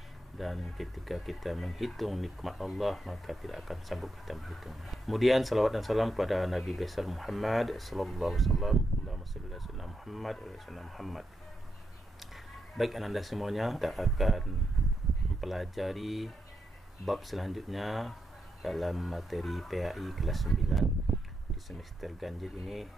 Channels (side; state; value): both; normal; correlation 0.83